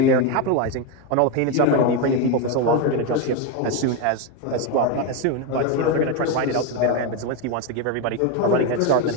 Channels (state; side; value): different; both; correlation 0.03